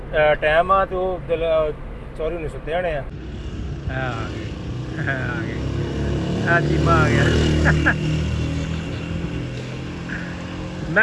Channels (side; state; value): both; identical; correlation 1.00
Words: ਟਾਈਮ ਆ ਤੇ ਉਹ ਦਿਲ ਚੋਰੀ ਨਹੀਂ ਸੁੱਤੇ ਹੋਣੇ ਆ। ਆ ਗਏ ਆ ਚੀਮਾ ਆ ਗਿਆ। मैं